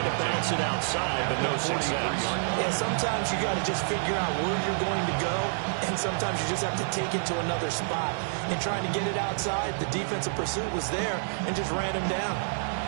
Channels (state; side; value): silent; left; digital silence